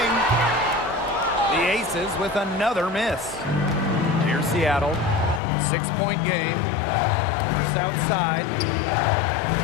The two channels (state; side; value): drops out; right; at 5.4 s